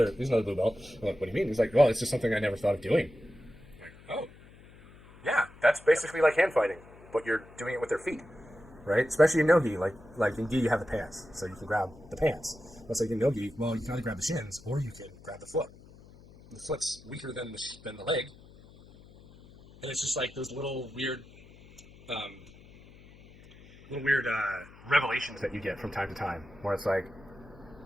blue belt. I'm like, what do you mean? He's like, well, it's just something I never thought of doing. I'm like, oh, yeah, that's basically like hand fighting, but you're doing it with their feet, right? Especially in no-gi, like in gi you have the pants, so you can grab the pants. But it's like in no-gi, well, you can either grab the shins or you can grab the foot. The foot's weaker than the leg, and it's just like those um, little weird revelations that you get from time to time, where it's like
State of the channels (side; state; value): left; noise; hum, 22 dB below the sound